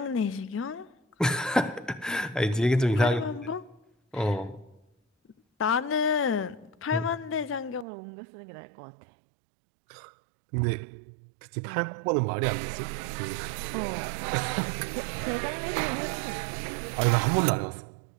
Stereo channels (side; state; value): left; drops out; at 7.9 s